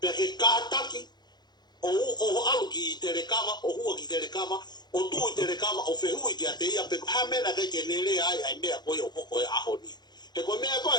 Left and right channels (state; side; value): late; right; 0.21 ms